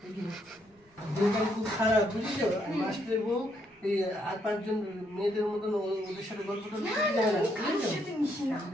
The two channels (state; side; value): normal; both; correlation 0.74